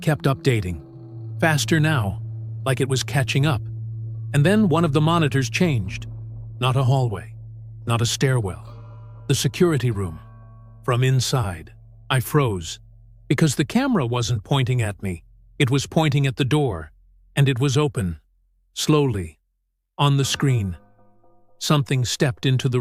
updating. Faster now, like it was catching up. And then one of the monitors changed. Not a hallway, not a stairwell. The security room. From inside, I froze, because the camera wasn't pointing at me. It was pointing at the door, and it was open. Slowly, on the screen, something stepped into the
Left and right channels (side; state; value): both; identical; correlation 1.00